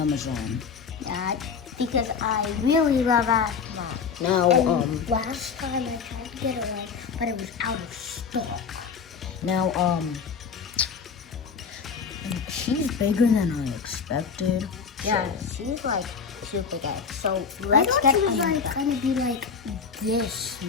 Yeah, because I really love Aphmau. Now, And last time I tried to get one, but it was out of stock. Now, she's bigger than I expected. Yeah, so- she's like super big. So let's get she was like gonna be like this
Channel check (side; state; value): right; quieter; 6.0 dB